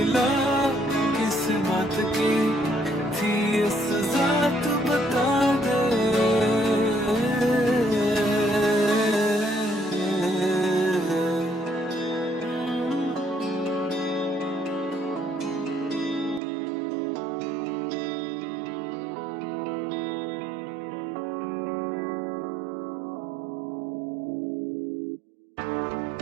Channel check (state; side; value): drops out; left; at 16.4 s